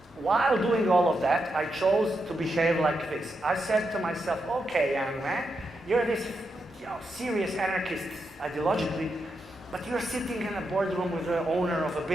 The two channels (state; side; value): normal; both; correlation 0.84